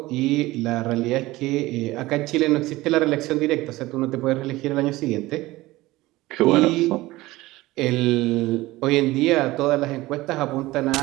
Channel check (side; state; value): left; quieter; 18.8 dB